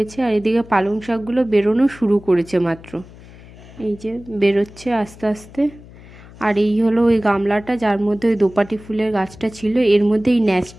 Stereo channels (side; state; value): left; noise; hum, 20 dB below the sound